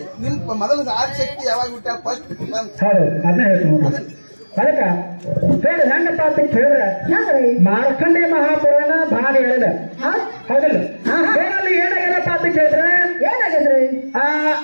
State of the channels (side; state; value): both; inverted; correlation -1.00